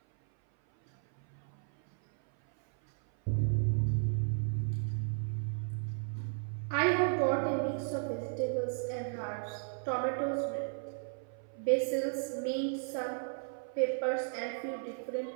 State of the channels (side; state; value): left; silent; 55 dB below the other